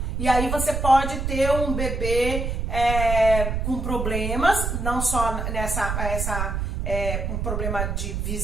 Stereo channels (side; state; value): right; noise; rumble, 2 dB below the sound